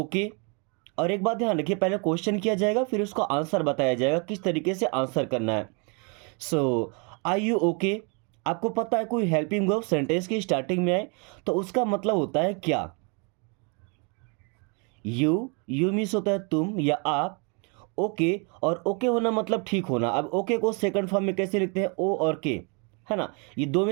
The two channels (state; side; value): quieter; left; 34.2 dB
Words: और एक बात ध्यान रखिए, पहले क्वेश्चन किया जाएगा फिर उसका आंसर बताया जाएगा किस तरीके से आंसर करना है। Are you okay. आपको पता है कोई हेल्पिंग वर्ब सेंटेंस की स्टार्टिंग में आए तो उसका मतलब होता है क्या। यू मीन्स होता है तुम या आप। ओके, और ओके होना मतलब ठीक होना। अब ओके को सेकंड फॉर्म में कैसे लिखते हैं, ओ और के, है ना। ये दो